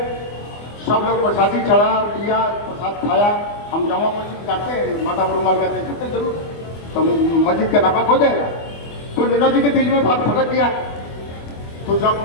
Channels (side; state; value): right; late; 24 ms